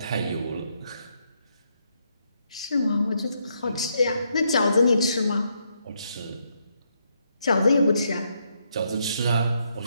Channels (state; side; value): inverted; both; correlation -0.77